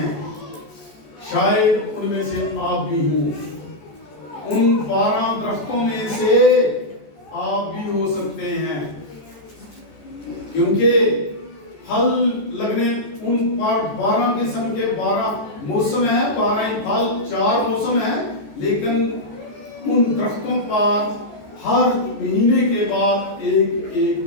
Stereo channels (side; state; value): right; late; 14 ms